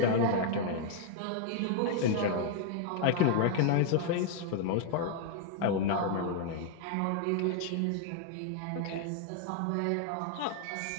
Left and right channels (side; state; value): both; different; correlation 0.00